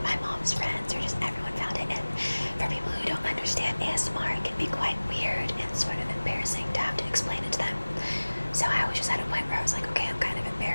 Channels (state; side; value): inverted; both; correlation -1.00